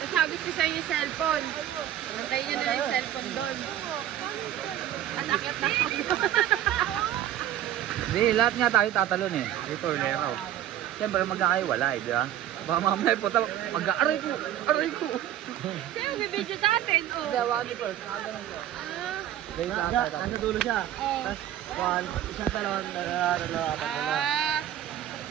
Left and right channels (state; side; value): quieter; left; 11.9 dB